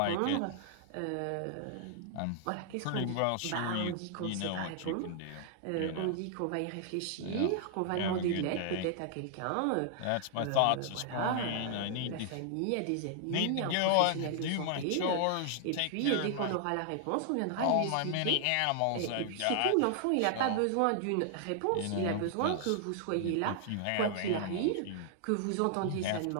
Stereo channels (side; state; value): both; different; correlation 0.00